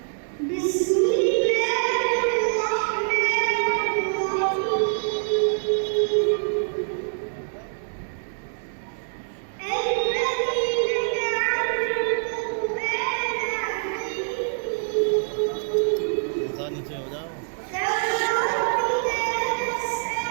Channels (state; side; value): silent; left; 62 dB below the other